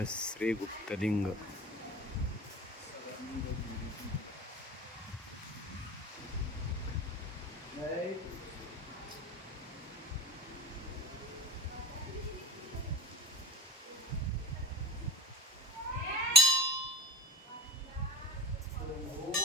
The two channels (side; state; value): both; normal; correlation 0.33